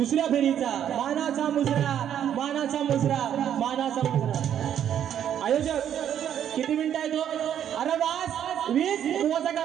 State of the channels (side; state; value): left; quieter; 9.8 dB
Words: फेरीचा मानाचा मुजरा, मानाचा मुजरा, मानाचा मुजरा. आयोजक किती मिनिटं आहे तो? अरे वास 20 मोजा